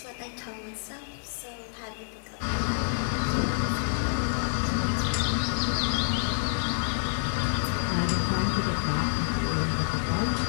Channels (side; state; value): right; silent; digital silence